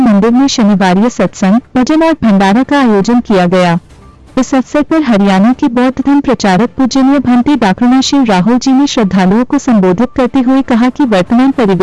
में शनिवार सत्संग, भजन और भंडारा का आयोजन किया गया। इस अवसर पर हरियाणा के बौद्ध धर्म प्रचारक पूजनीय भंती डाकरुणाशील राहुल जी ने श्रद्धालुओं को संबोधित करते हुए कहा कि वर्तमान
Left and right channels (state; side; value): identical; both; correlation 1.00